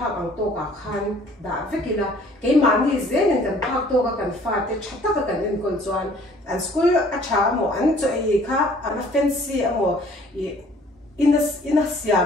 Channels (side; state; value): both; normal; correlation 0.56